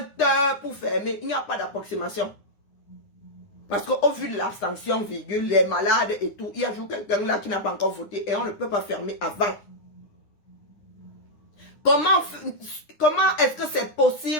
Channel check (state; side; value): late; right; 9.8 ms